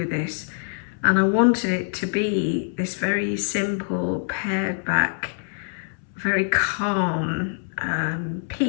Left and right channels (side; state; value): right; silent; 62 dB below the other